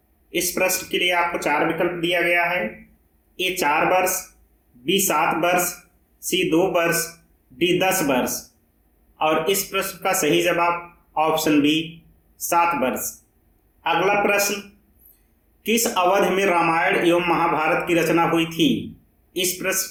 इस प्रश्न के लिए आपको 4 विकल्प दिया गया है। ए 4 वर्ष, बी 7 वर्ष, सी 2 वर्ष, डी 10 वर्ष। और इस प्रश्न का सही जवाब ऑप्शन बी 7 वर्ष। अगला प्रश्न, किस अवधि में रामायण एवं महाभारत की रचना हुई थी? इस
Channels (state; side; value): identical; both; correlation 1.00